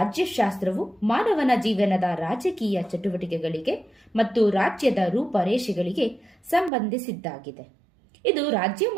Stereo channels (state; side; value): drops out; left; at 6.7 s